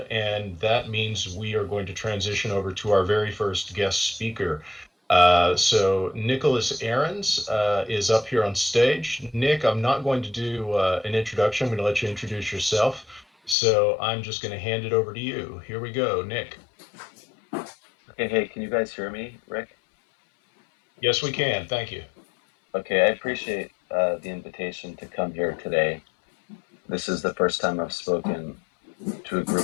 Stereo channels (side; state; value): right; drops out; at 13.6 s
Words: and that means we are going to transition over to our very first guest speaker. So Nicholas Ahrens is up here on stage. Nick, I'm not going to do an introduction. I'm going to let you introduce yourself. So I'm just going to hand it over to you. Here we go, Nick. Okay, hey, can you guys hear me, Rick? Yes, we can. Thank you. Okay, I appreciate the invitation to come here today. This is the first time I've spoken to a